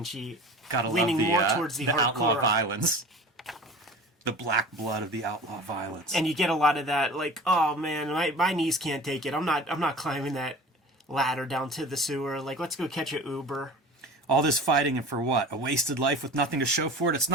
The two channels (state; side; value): normal; both; correlation 0.38